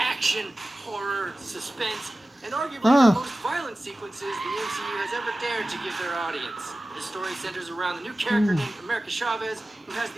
horror, suspense, and arguably the most violent sequences the MCU has ever dared to give their audience. The story centers around the new character named America Chavez, who has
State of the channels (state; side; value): normal; both; correlation 0.96